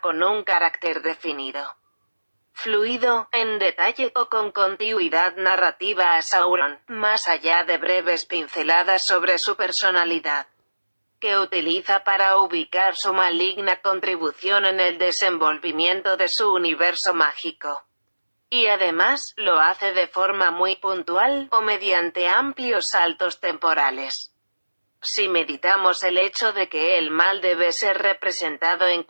un carácter definido, fluido, en detalle o con continuidad narrativa a Sauron, más allá de breves pinceladas sobre su personalidad, que utiliza para ubicar su maligna contribución en el desenvolvimiento de su universo mágico. Y además, lo hace de forma muy puntual, o mediante amplios saltos temporales. Si meditamos el hecho de que el mal debe ser representado en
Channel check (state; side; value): inverted; both; correlation -1.00